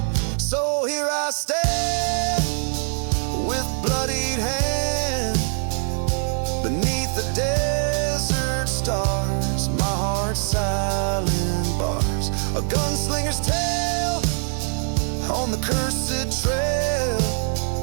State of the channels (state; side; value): silent; left; 59 dB below the other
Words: So here I stand, with bloodied hand, beneath the desert stars, my heart's silent bars, a gunslinger's tale on the cursed trail.